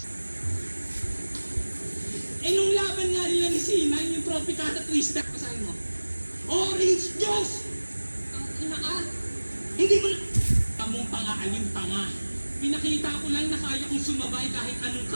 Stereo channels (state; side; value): inverted; both; correlation -1.00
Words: Nung laban nga nila ni Sinan, yung Tropicana Twister, kasahin mo, Orange Juice! Ang ina ka, hindi mo mong pangaalim panga. Pinakita ko lang na kaya kong sumabay kahit anong